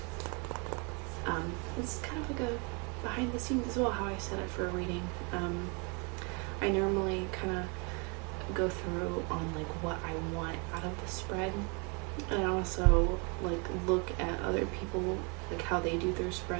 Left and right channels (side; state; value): left; quieter; 32.9 dB